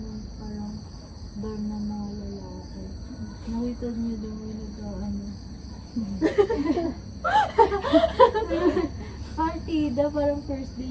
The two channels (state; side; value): identical; both; correlation 1.00